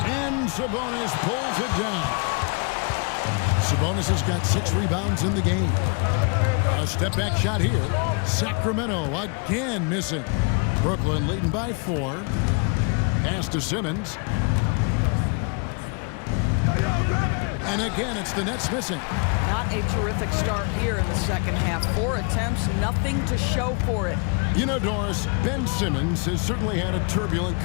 And Sabonis pulls it down. Sabonis has got 6 rebounds in the game. A step-back shot here. Sacramento again missing. Brooklyn leading by 4. Pass to Simmons. And again, it's the Nets missing. Not a terrific start here in the second half. 4 attempts, nothing to show for it. You know, Doris, Ben Simmons has certainly had a turbulent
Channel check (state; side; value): quieter; right; 35.9 dB